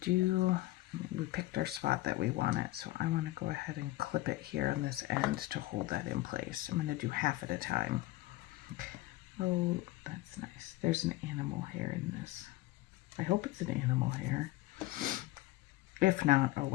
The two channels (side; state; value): right; quieter; 18.0 dB